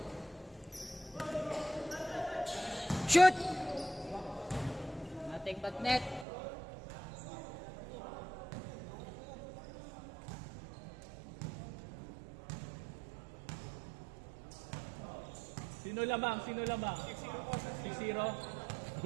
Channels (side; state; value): left; drops out; at 6.2 s